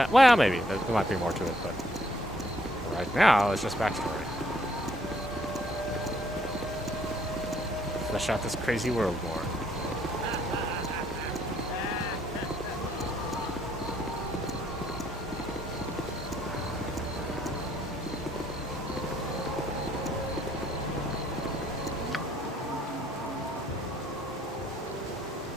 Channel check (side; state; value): both; normal; correlation 0.68